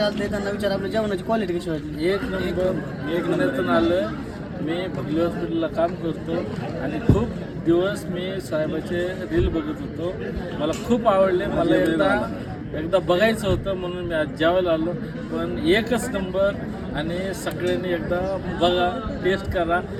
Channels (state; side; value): identical; both; correlation 1.00